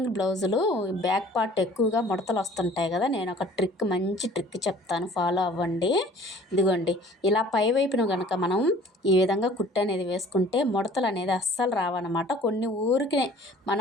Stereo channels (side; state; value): both; normal; correlation 0.50